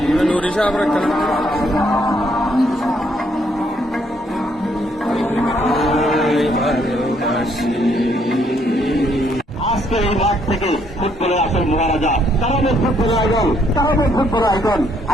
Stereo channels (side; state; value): both; normal; correlation 0.70